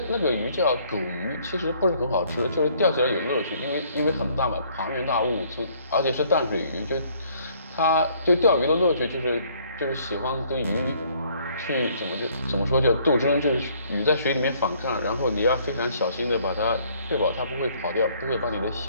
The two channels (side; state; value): both; inverted; correlation -0.62